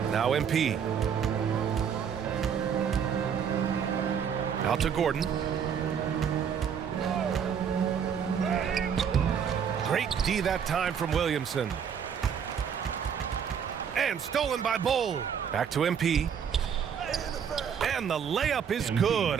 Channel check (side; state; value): left; quieter; 7.6 dB